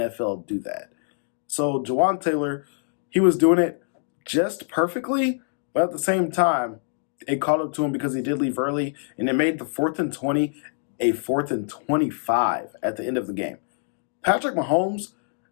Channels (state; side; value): silent; right; digital silence